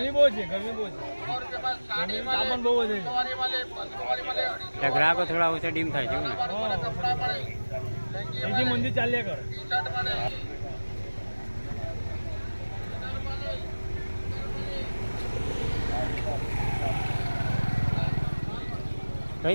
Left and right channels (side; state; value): both; inverted; correlation -1.00